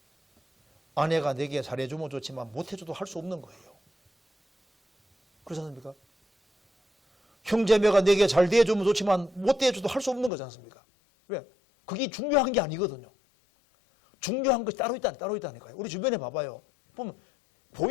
아내가 내게 잘해주면 좋지만 못해줘도 할 수 없는 거예요. 그렇지 않습니까? 형제매가 내게 잘 대해주면 좋지만 못 대해줘도 할 수 없는 거지 않습니까? 왜? 그게 중요한 게 아니거든요. 중요한 것이 따로 있다니까요. 우리 주변에 봐봐요. 보면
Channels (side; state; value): right; drops out; at 10.3 s